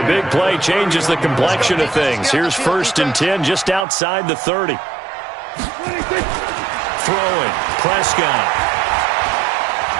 big play changes the complexion of things. Here's 1st and 10 just outside the 30. Throwing, Prescott.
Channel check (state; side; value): drops out; left; at 3.9 s